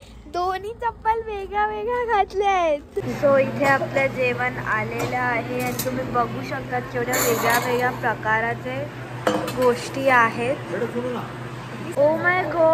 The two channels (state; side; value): identical; both; correlation 1.00